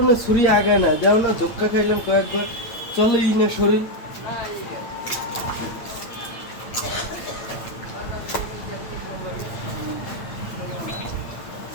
ছুরি আগায় না যাও না ধক্কা খাইলাম কয়েকবার চলেই না শরীর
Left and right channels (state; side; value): late; right; 8.9 ms